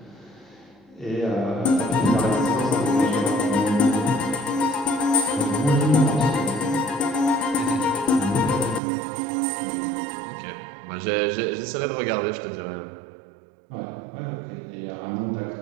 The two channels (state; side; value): drops out; left; at 8.8 s